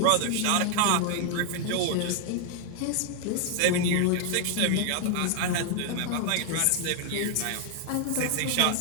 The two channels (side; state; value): both; different; correlation 0.00